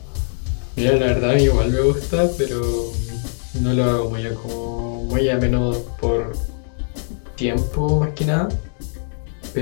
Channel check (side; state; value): right; silent; digital silence